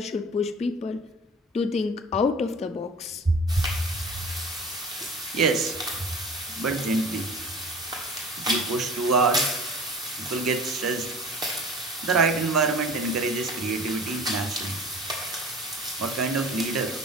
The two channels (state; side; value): normal; both; correlation 0.41